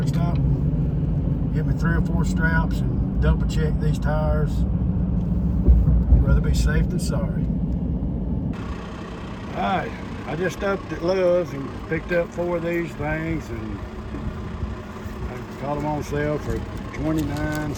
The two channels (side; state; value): both; identical; correlation 1.00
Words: stop, get me 3 or 4 straps, and double check these tires. Rather be safe than sorry. All right, I just stopped at Love's and picked up 4 of these things, and I caught them on sale for $29